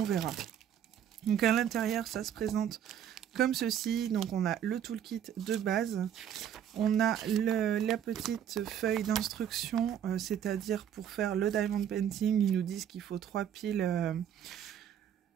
verra. Donc à l'intérieur, ça se présente comme ceci. Donc on a le toolkit de base. On a la petite feuille d'instruction, c'est-à-dire pour faire le diamond painting, ils nous disent qu'il faut 3 piles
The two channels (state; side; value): quieter; left; 9.5 dB